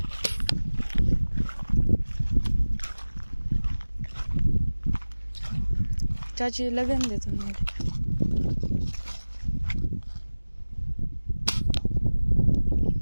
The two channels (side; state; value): both; inverted; correlation -1.00